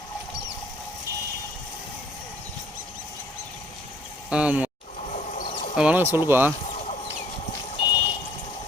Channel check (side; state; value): both; normal; correlation 0.58